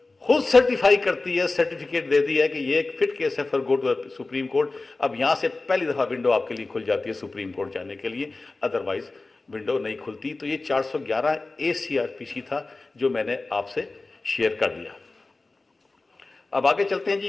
खुद सर्टिफाई करती है, सर्टिफिकेट देती है कि ये एक फिट केस है for go to supreme court, अब यहां से पहली दफा विंडो आपके लिए खुल जाती है सुप्रीम कोर्ट जाने के लिए, अदरवाइज विंडो नहीं खुलती। तो ये 411A CRPC था जो मैंने आपसे शेयर कर दिया। अब आगे चलते हैं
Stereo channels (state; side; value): quieter; right; 3.4 dB